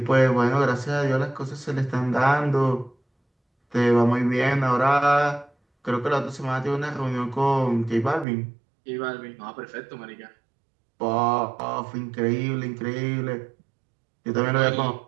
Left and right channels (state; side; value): drops out; left; at 8.2 s